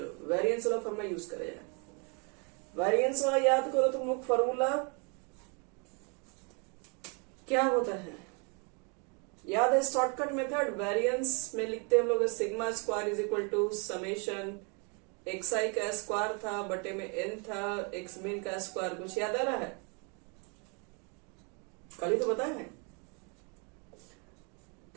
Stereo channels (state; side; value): quieter; left; 34.6 dB